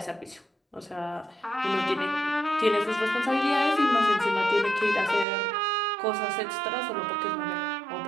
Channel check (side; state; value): left; drops out; at 5.2 s